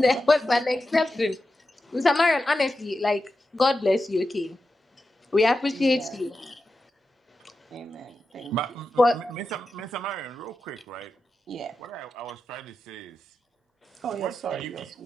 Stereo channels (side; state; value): both; normal; correlation 0.90